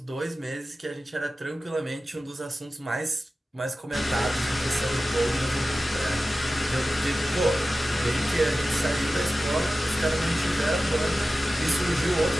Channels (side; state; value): both; normal; correlation 0.94